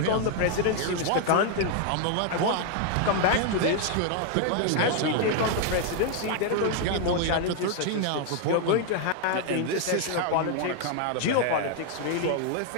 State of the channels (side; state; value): both; different; correlation 0.00